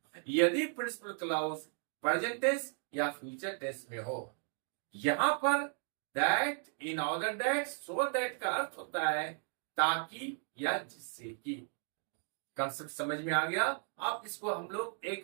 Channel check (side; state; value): left; silent; 54 dB below the other